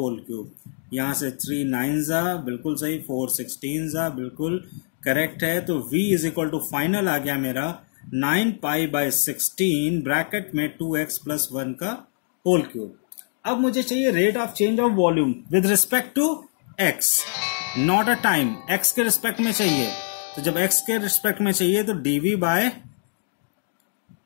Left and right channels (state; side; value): silent; right; digital silence